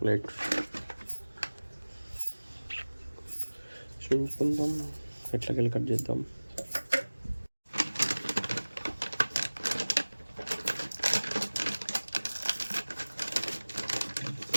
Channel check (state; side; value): inverted; both; correlation -1.00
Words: చూసుకుందాం, ఎట్లకెళ్ళి కట్ చేద్దాం.